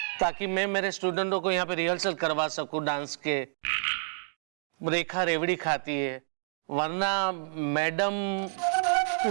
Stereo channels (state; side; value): silent; left; digital silence